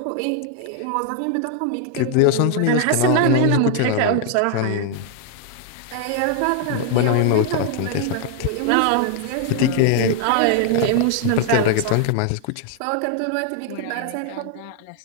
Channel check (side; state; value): both; different; correlation 0.00